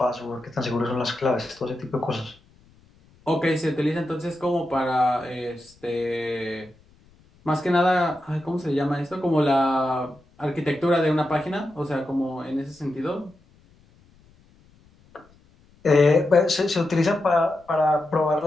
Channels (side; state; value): left; noise; rumble, 30 dB below the sound